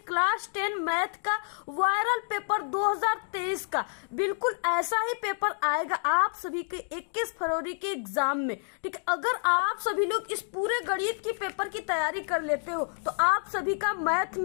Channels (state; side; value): silent; right; 59 dB below the other